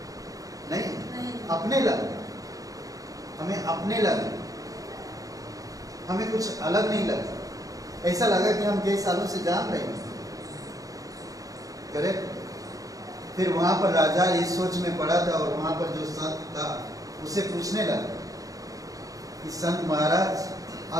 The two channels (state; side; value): late; left; 0.17 ms